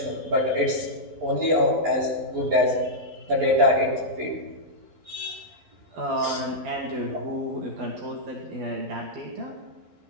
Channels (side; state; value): left; late; 11 ms